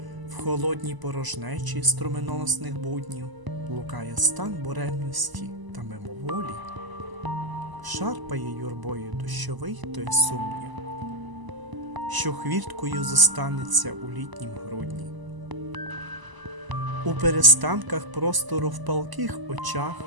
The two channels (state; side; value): late; left; 1.0 ms